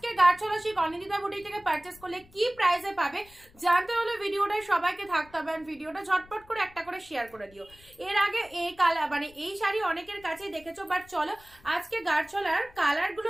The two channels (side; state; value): left; noise; rumble, 25 dB below the sound